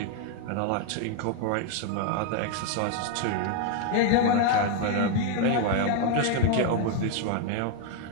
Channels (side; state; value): both; different; correlation 0.01